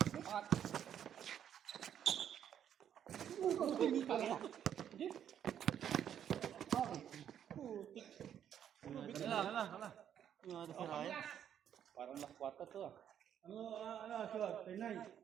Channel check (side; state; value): left; quieter; 9.5 dB